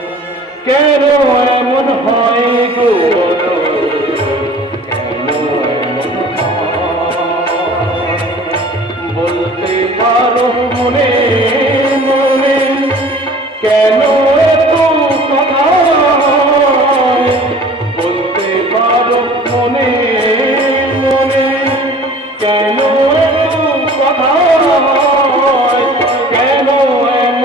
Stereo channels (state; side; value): normal; both; correlation 0.46